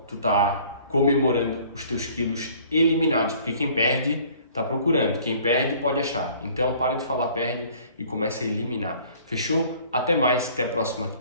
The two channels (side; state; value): both; inverted; correlation -0.54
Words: tu tá comemorando os teus quilos eliminados, porque quem perde tá procurando, quem perde pode achar. Então para de falar perde e começa a eliminar. Fechou? Até mais, até a próxima